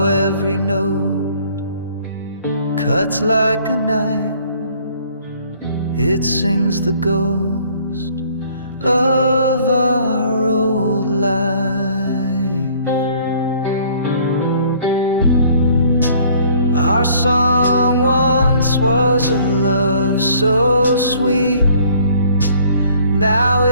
every note cuts like a knife. It sings the ghost of our old life. Our song once was a love so sweet. Now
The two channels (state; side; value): inverted; both; correlation -0.58